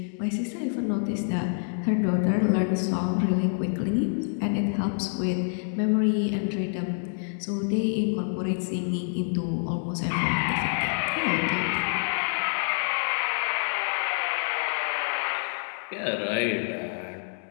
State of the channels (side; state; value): right; silent; 60 dB below the other